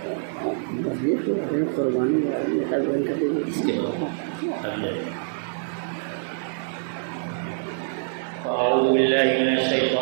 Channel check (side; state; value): left; silent; digital silence